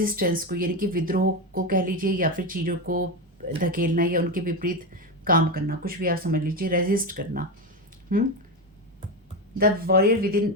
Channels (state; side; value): normal; both; correlation 0.15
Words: को, यानी कि विद्रोह को कह लीजिए, या फिर चीज़ों को धकेलना या उनके विपरीत काम करना, कुछ भी आप समझ लीजिए, रेजिस्ट करना। The warrior within